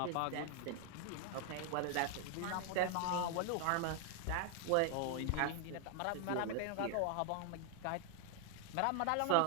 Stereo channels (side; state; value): both; different; correlation 0.00